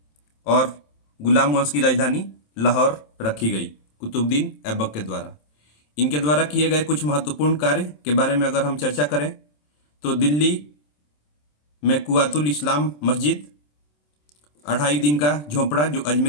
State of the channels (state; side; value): late; right; 27 ms